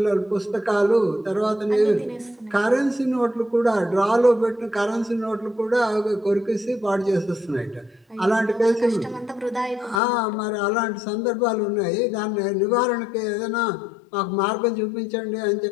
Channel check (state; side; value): drops out; right; at 10.0 s